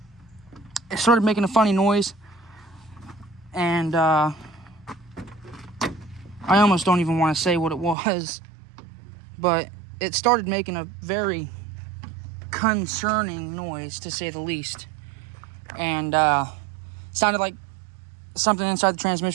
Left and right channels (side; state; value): left; drops out; at 8.0 s